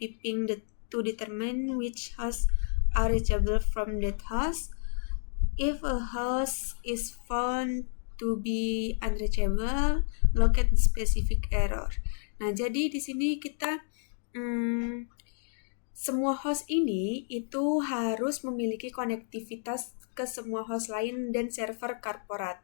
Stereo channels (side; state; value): right; silent; digital silence